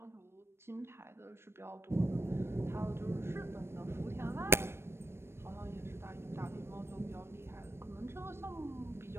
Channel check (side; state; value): left; late; 0.12 ms